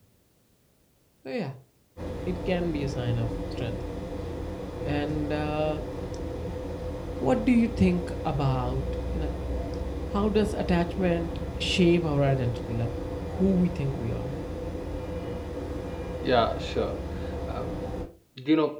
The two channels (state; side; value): identical; both; correlation 1.00